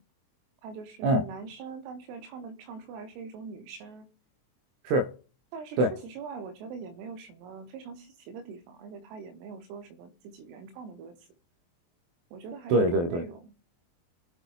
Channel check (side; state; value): left; late; 23 ms